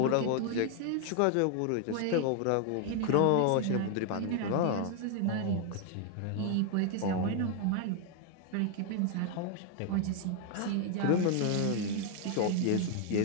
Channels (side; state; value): both; different; correlation 0.00